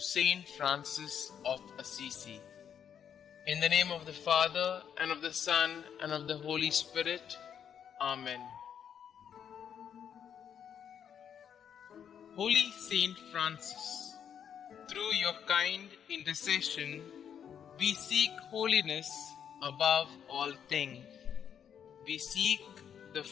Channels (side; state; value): right; quieter; 8.4 dB